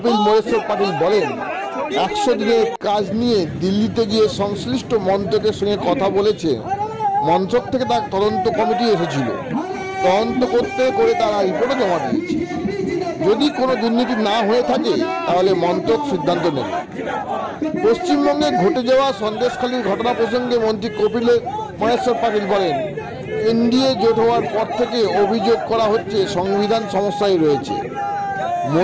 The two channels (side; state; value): both; identical; correlation 1.00